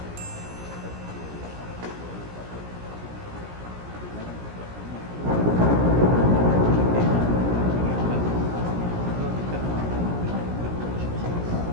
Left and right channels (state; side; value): late; left; 17 ms